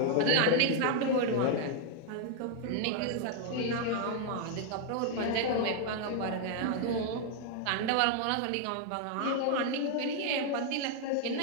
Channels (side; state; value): both; different; correlation 0.00